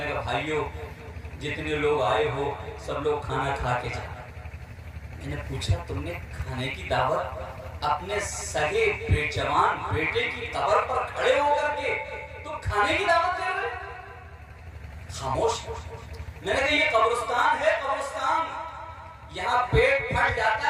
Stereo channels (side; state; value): both; identical; correlation 1.00